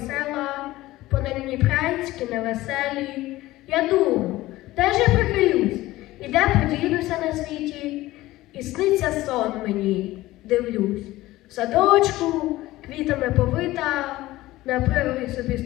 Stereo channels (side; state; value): right; quieter; 17.3 dB